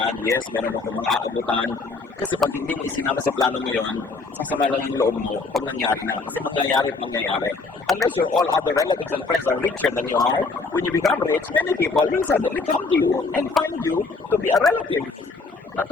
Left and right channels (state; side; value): quieter; right; 3.9 dB